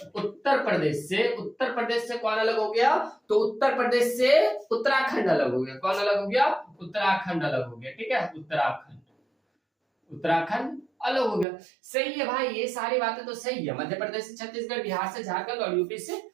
उत्तर प्रदेश से कौन अलग हो गया, तो उत्तर प्रदेश से उत्तराखंड अलग हो गया। कौन अलग हो गया, उत्तराखंड अलग हो गया। ठीक है, उत्तराखंड अलग हो गया। सही है भाई, ये सारी बातें तो सही है। मध्य प्रदेश से छत्तीसगढ़, बिहार से झारखंड और यूपी से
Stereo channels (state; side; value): drops out; left; at 11.5 s